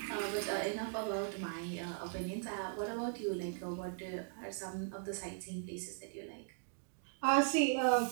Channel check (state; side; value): silent; left; digital silence